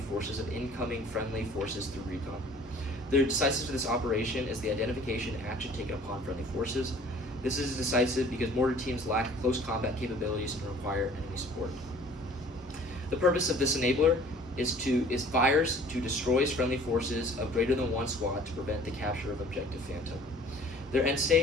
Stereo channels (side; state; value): both; normal; correlation 0.51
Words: forces of incoming friendly forces through recon. The decisive for this operation is the identification and action taken upon friendly forces. This is decisive because mortar teams lack close combat capabilities and require enemy support. The purpose of this enabler is fires to destroy friendly forces of greater than one squad to prevent the capture of Objective Phantom. Their end